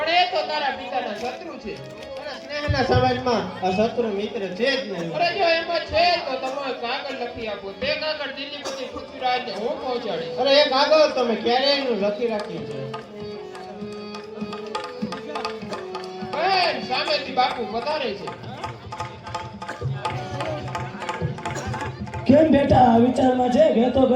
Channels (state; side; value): identical; both; correlation 1.00